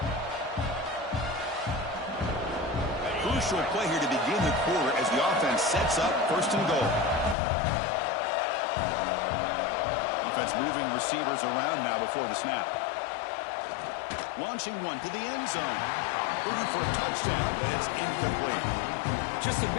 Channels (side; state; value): right; drops out; at 7.4 s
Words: Crucial play here to begin the quarter as the offense sets up 1st and goal. Offense moving receivers around now before the snap. Launching one to the end zone. Looking for a touchdown, but it's incomplete. Just a